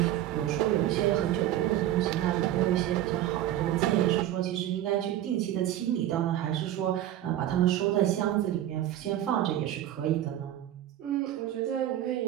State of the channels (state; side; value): quieter; left; 12.7 dB